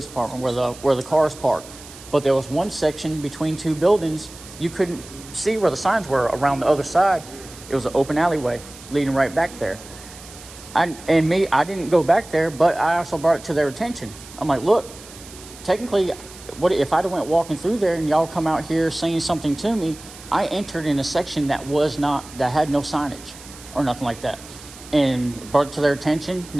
department where the cars parked. But there was one section between two buildings. You couldn't see where the signs were around the other side. It was an open alleyway leading right back there. I didn't go back there, but I also brought it to their attention. I'm like, look, technically, what if I'd have went walking through there and y'all come out here saying something to me? I entered in a section that had no signage or nothing like that, and brought it to their attention.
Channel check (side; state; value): right; noise; hiss, 18 dB below the sound